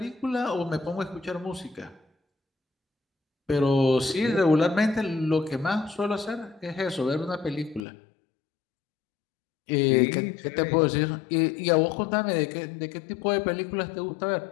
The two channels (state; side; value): drops out; right; at 7.9 s